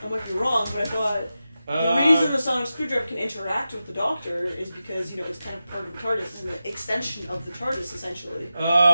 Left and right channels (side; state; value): both; inverted; correlation -0.92